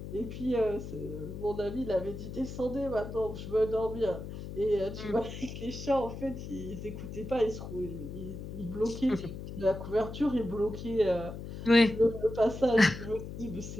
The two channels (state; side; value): noise; left; hum, 9 dB below the sound